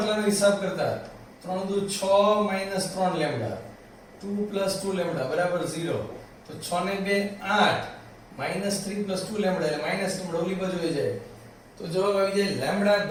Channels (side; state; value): both; identical; correlation 1.00